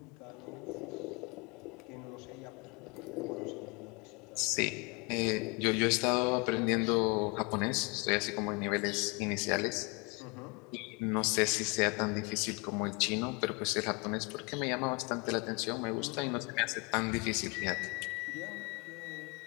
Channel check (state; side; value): quieter; right; 30.2 dB